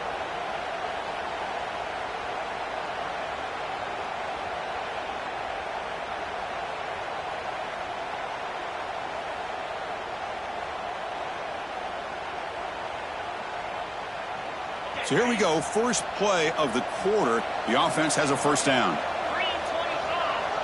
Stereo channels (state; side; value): identical; both; correlation 1.00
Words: So here we go, first play of the quarter. The offense has a first down.